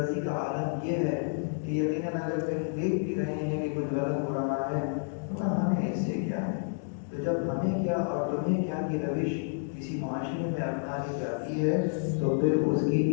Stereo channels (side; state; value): right; silent; digital silence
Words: کا عالم یہ ہے کہ یقیناً اگر کہیں دیکھ بھی رہے ہیں کہ کچھ غلط ہو رہا ہے تو ہمیں اس سے کیا ہے۔ تو جب ہمیں کیا اور تمہیں کیا کی روش کسی معاشرے میں اپنا لی جاتی ہے تو پھر اس کی